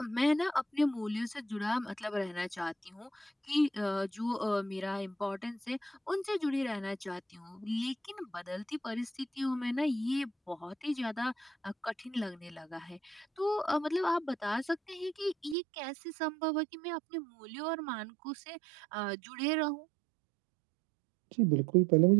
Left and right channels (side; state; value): left; drops out; at 15.6 s